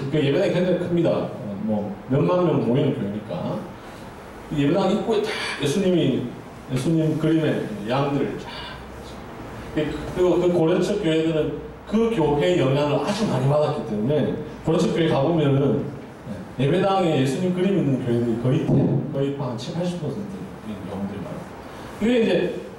그 예배당이 굉장히 큽니다. 뭐 몇만 명 모이는 교회니까 예배당 입구에 다 예수님 그림의 양들 쫙 그리고 그 고려측 교회들은 그 교회의 영향을 아주 많이 받았기 때문에 고려측 교회 가보면은 예배당에 예수님 그림 있는 교회들이 거의 한 70~80%인 경우들이 많아요. 이게 이제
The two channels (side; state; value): both; identical; correlation 1.00